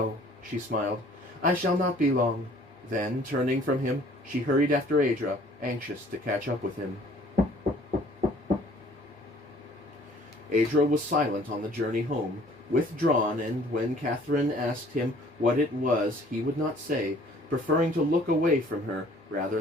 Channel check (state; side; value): normal; both; correlation 0.55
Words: she smiled. I shall not be long. Then, turning from him, she hurried after Adra, anxious to catch up with him. Adra was silent on the journey home, withdrawn, and when Catherine asked him what it was, he would not say, preferring to look away from her rather